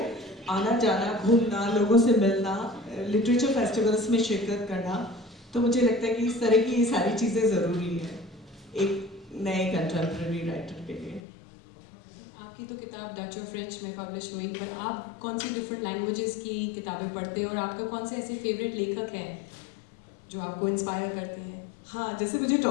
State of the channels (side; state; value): right; drops out; at 11.2 s